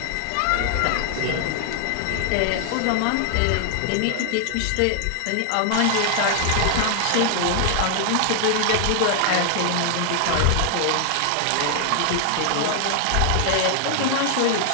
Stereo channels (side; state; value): both; different; correlation 0.00